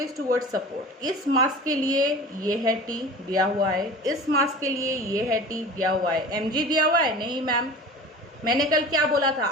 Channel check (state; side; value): normal; both; correlation 0.37